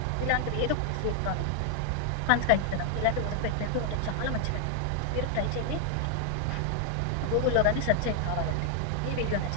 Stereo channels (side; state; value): both; different; correlation 0.00